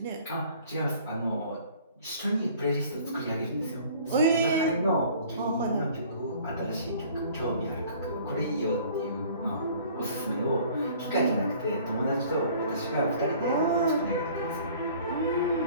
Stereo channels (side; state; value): both; inverted; correlation -0.52